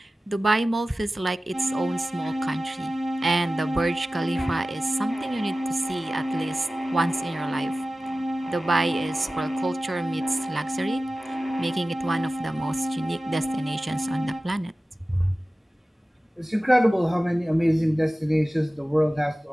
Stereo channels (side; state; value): both; normal; correlation 0.96